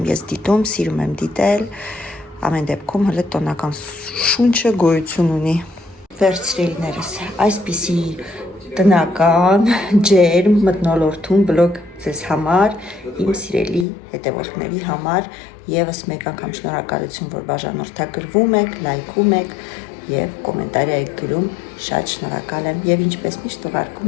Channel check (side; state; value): right; drops out; at 13.9 s